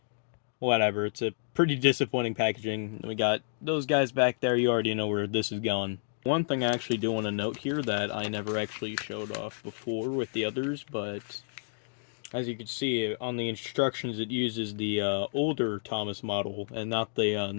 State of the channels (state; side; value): silent; right; digital silence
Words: whatever. It's a pretty disappointing packaging. We got those guys back there. You already know where this is going. One thing I actually do want to note here that I never actually showed off before with the others, but as you can see on the instructions, it uses the older Thomas model and not the